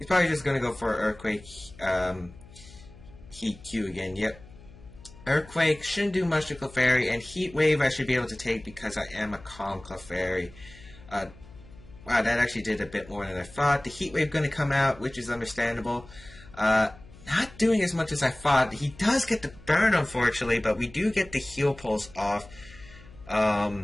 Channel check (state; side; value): noise; left; hum, 21 dB below the sound